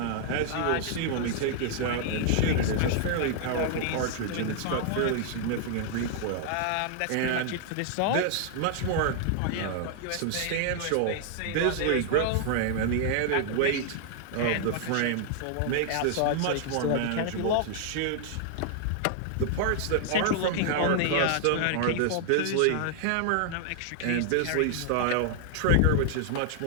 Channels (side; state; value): both; different; correlation 0.00